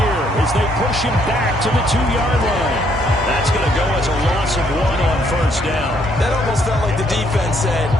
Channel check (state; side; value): normal; both; correlation 0.69